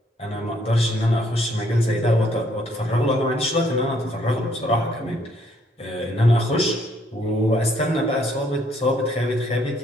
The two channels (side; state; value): both; normal; correlation 0.67